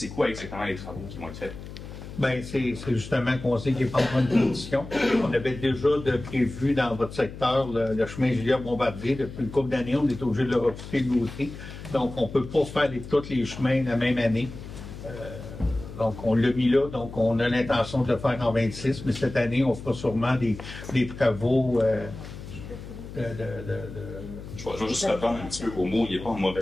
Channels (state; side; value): noise; left; hum, 12 dB below the sound